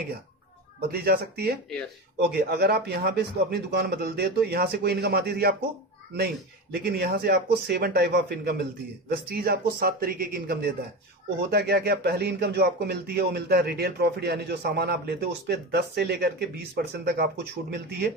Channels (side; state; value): both; normal; correlation 0.23